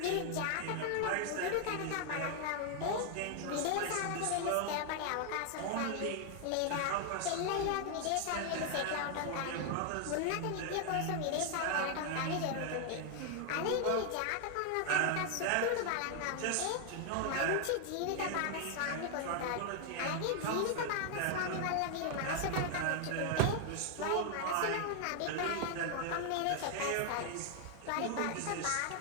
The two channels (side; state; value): both; different; correlation 0.00